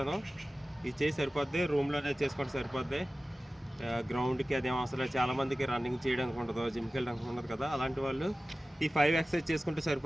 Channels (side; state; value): both; normal; correlation 0.96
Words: ఇది చేసి సరిపోద్ది, రూమ్లోనే చేసుకుంటే సరిపోద్ది. గ్రౌండ్కి అదేం అవసరం లేదు. చాలామందికి రన్నింగ్ చేయడానికి ఉండదు, జిమ్కి వెళ్ళడానికి ఉండదు కదా. అలాంటి వాళ్ళు ఈ 5 ఎక్సర్సైజ్ చేసుకుంటే